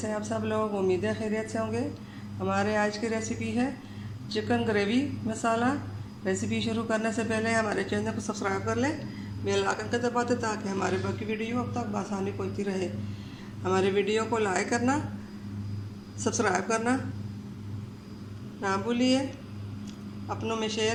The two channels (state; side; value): identical; both; correlation 1.00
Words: हैं आप सब लोग। उम्मीद है खैरियत से होंगे। हमारे आज की रेसिपी है चिकन ग्रेवी मसाला। रेसिपी शुरू करने से पहले हमारे चैनल को सब्सक्राइब कर लें, बेल आइकन को दबा दें ताकि हमारे बाकी वीडियो अब तक आसानी पहुंचती रहे। हमारे वीडियो को लाइक करना, सब्सक्राइब करना ना भूलिए, अपनों में